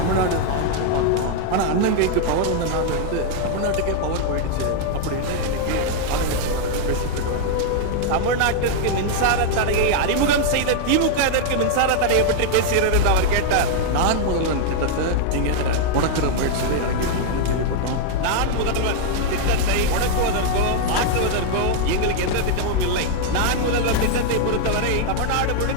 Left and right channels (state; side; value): different; both; correlation 0.00